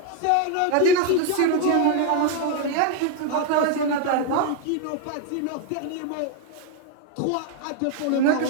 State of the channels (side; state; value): both; different; correlation 0.01